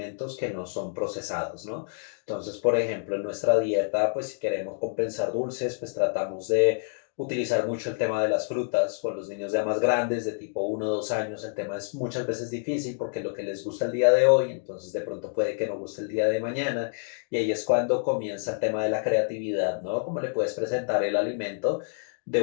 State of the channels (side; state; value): right; silent; digital silence